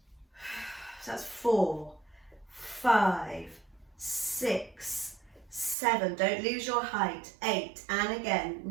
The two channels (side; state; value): left; drops out; at 5.8 s